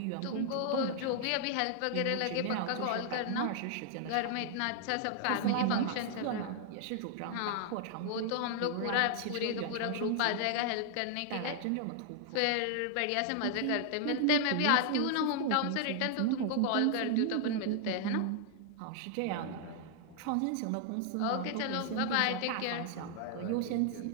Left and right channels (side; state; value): both; different; correlation 0.00